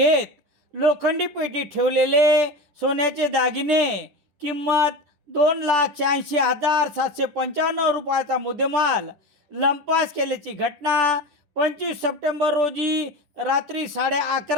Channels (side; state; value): left; late; 10 ms